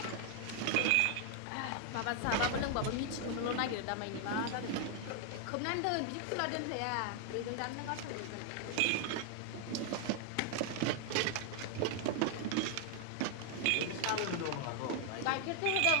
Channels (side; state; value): both; different; correlation 0.00